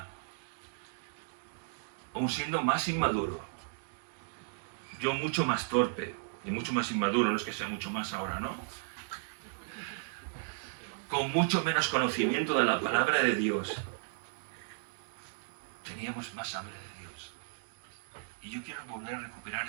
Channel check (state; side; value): silent; left; digital silence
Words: aún siendo más inmaduro, yo mucho más torpe y mucho más inmaduro, no es que sea mucho más ahora, ¿no? Con mucho menos conocimiento de la palabra de Dios, teníamos más hambre de Dios. Y yo quiero volver a recuperar